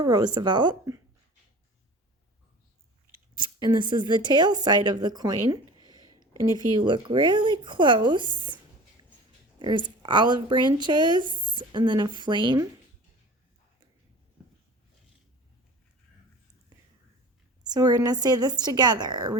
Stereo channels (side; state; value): both; normal; correlation 0.40